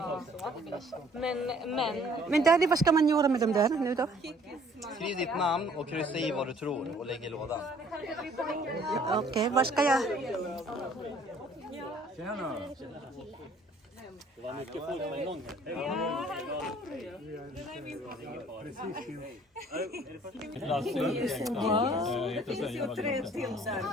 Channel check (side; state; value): both; normal; correlation 0.57